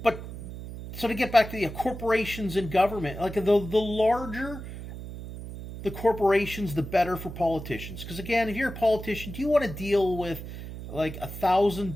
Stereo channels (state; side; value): noise; right; hum, 10 dB below the sound